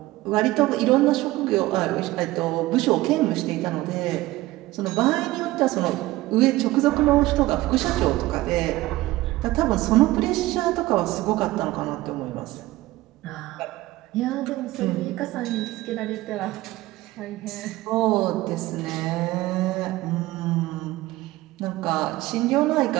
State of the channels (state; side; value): quieter; left; 18.0 dB